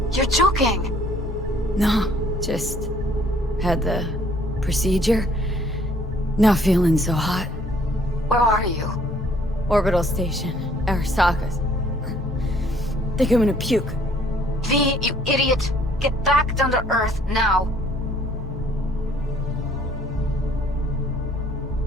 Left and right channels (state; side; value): normal; both; correlation 0.60